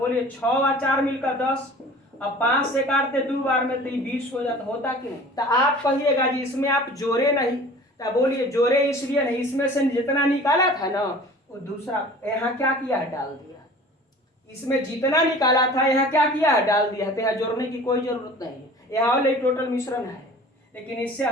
6 और 4 मिलकर 10। अब 5 से काटते 2 बार में तो 20 हो जाता, होता कि नहीं। तो आप कहिएगा जी इसमें आप जोड़े नहीं, तो बोलिए जोड़े इसलिए नहीं, इसमें से जितना निकाला था ना वो दूसरा यहाँ क्या किया है डाल दिया, इसमें जितना निकाला था यहाँ क्या किया है डाल दिया है, तो यहाँ जोड़ने की कोई जरूरत नहीं है, यहाँ वाले टोटल मिश्रण है। लेकिन इससे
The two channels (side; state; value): both; normal; correlation 0.44